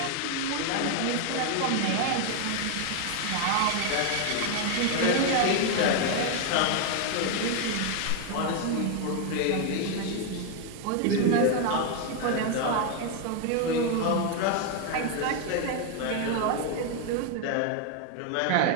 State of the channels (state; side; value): different; both; correlation 0.01